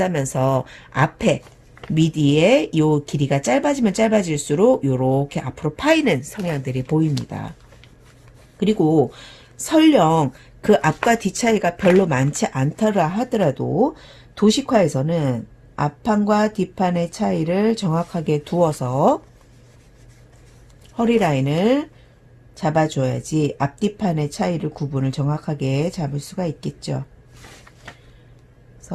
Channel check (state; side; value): identical; both; correlation 1.00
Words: 앞에 미디의 요 길이가 짧아지면 짧아질수록 요렇게 앞으로 파이는 성향들이 보입니다. 그리고 설령 그 앞과 뒤 차이가 별로 많지 않더라 하더라도 도식화에서는 앞판과 뒷판의 차이를 정확하게 두어서 허리 라인을 잡아줘야지 앞뒤판의 차이를 구분을 정확하게 잡을 수가 있겠죠.